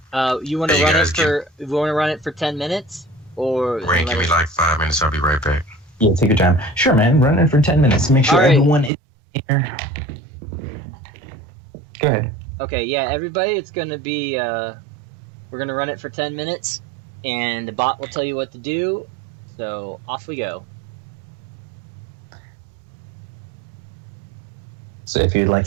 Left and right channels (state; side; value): drops out; left; at 8.9 s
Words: Yep. You want to run it for 10 minutes? Or Rain, give me like 5 minutes. I'll be right back. Yeah, take your time. Sure, man. Run it for 10 minutes. Make sure everyone is here. Go ahead. Okay, yeah, everybody, it's going to be, we're going to run it for 10 minutes, and the bot will tell you what to do, so off we go. So if you'd like